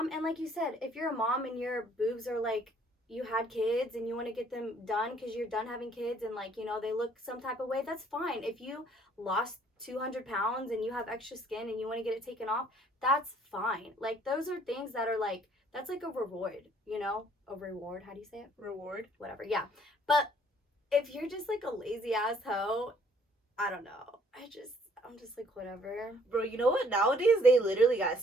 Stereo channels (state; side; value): normal; both; correlation 0.61